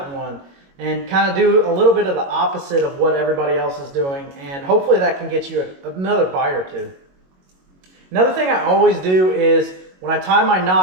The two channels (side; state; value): left; late; 22 ms